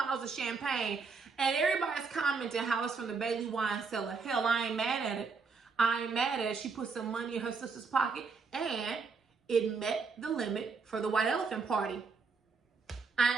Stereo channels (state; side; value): quieter; left; 4.9 dB